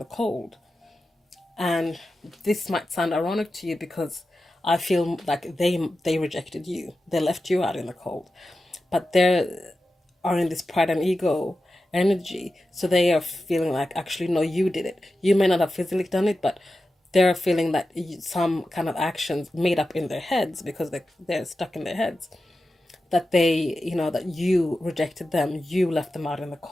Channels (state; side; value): normal; both; correlation 0.92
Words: cold. And this might sound ironic to you, because I feel like they rejected you. They left you out in the cold. but they are in this pride and ego energy. So they are feeling like, actually, no, you did it. You may not have physically done it, but they're feeling that some kind of actions made up in their heads, because they're stuck in their heads, that they, that you rejected them, you left them out in the